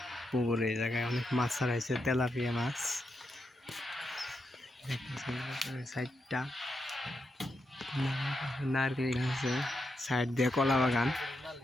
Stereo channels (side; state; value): both; normal; correlation 0.84